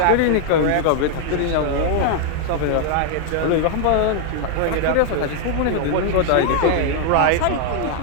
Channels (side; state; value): both; different; correlation 0.00